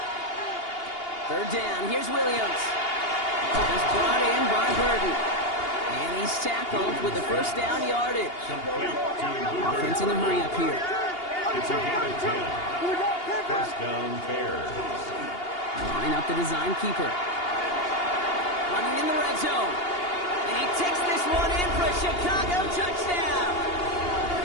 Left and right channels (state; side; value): late; right; 2.8 ms